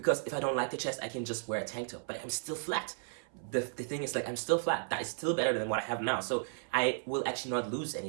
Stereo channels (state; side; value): silent; left; 55 dB below the other